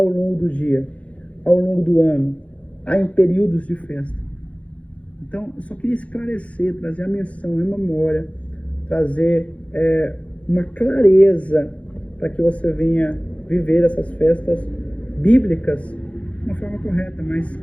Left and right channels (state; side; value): late; right; 0.064 ms